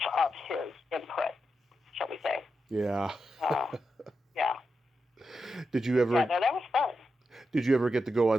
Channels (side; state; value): both; normal; correlation 0.87